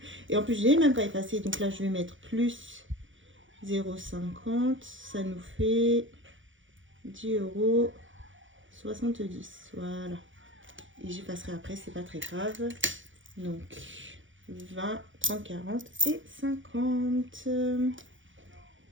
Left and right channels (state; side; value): late; left; 0.56 ms